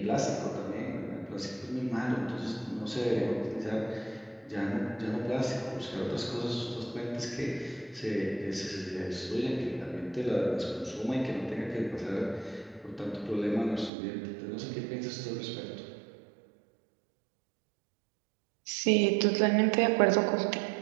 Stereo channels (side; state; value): left; drops out; at 13.9 s